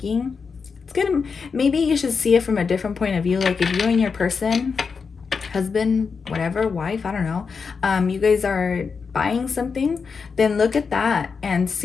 maybe you should see it from a different point of view. Like if you and your person, husband, whatever, wife, I don't know, you guys are buying something, then look at that and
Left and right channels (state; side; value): quieter; right; 5.4 dB